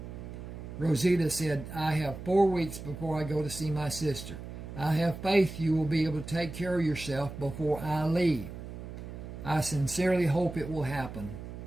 Rosita said, I have 4 weeks before I go to see my sister. I have faith you will be able to take care of yourself before I leave. I sincerely hope it will happen.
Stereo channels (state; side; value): noise; right; hum, 10 dB below the sound